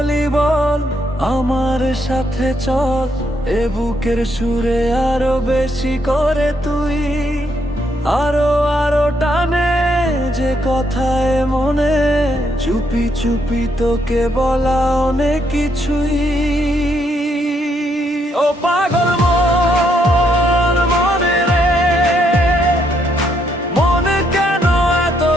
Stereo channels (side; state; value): both; normal; correlation 0.75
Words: বল, আমার সাথে চল, এ বুকের সুরে আরো বেশি করে তুই। আরো আরো টানে যে কথায় মনে, চুপি চুপি তোকে বলা অনেক কিছুই। ও পাগল মন, মনে রে, মনে কেন এত